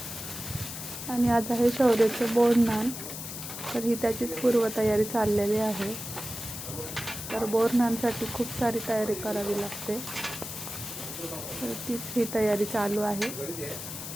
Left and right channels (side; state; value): left; noise; hiss, 8 dB below the sound